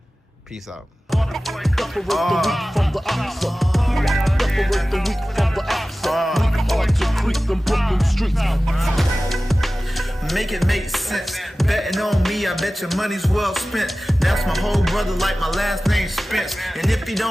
Peace out. Make it make sense. Betting on me, I bet your money's well spent. That's my whole brother, like my last name Spence. And if you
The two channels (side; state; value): both; normal; correlation 0.96